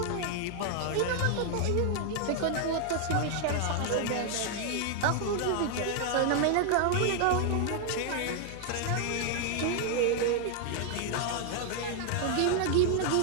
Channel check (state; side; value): different; both; correlation 0.00